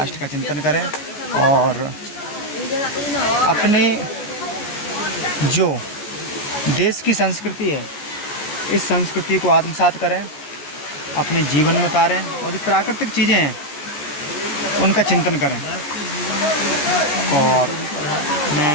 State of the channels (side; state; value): right; late; 14 ms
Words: का चिंतन करें और अपने जो देश की संस्कृति है, इस संस्कृति को आत्मसात करें, अपने जीवन में उतारें और जो प्राकृतिक चीज़ें हैं उनका चिंतन करें। और